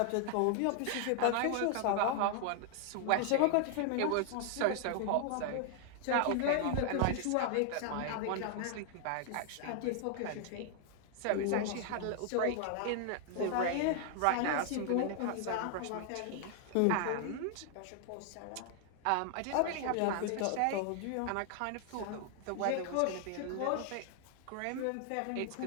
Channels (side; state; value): both; different; correlation 0.00